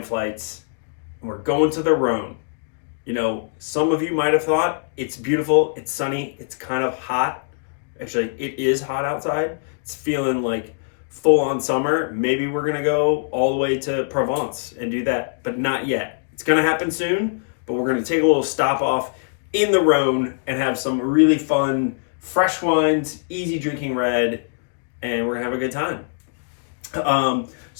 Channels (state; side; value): silent; right; digital silence